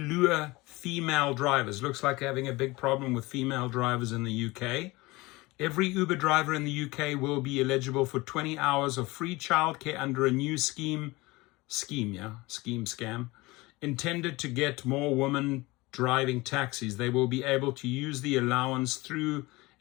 female drivers. Looks like they're having a big problem with female drivers in the UK. Every Uber driver in the UK will be eligible for 20 hours of free childcare under a new scam, intended to get more women driving taxis. They will be able to use the allowance through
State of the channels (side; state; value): right; quieter; 22.0 dB